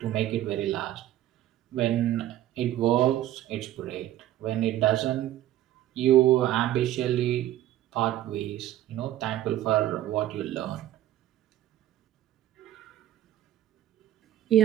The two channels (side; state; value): left; quieter; 13.3 dB